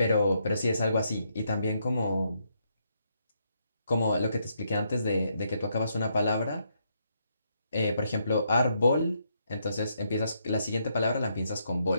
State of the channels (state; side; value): inverted; both; correlation -0.76